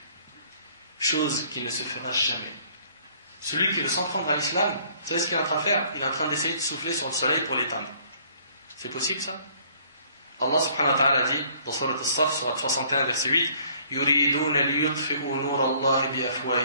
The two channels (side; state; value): both; inverted; correlation -0.60